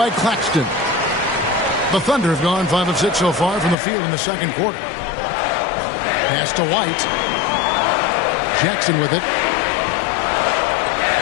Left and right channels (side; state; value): right; drops out; at 3.8 s